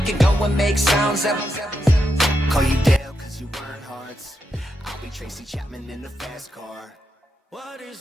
go and make sounds that Call you Dale, cause you burn hearts. I'll be Tracy Chapman in a fast car. What is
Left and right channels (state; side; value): normal; both; correlation 0.84